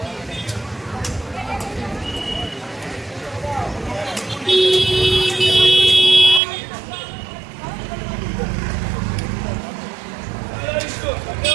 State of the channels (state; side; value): drops out; left; at 6.4 s